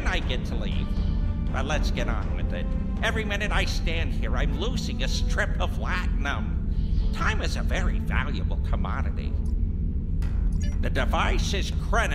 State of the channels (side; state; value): both; identical; correlation 1.00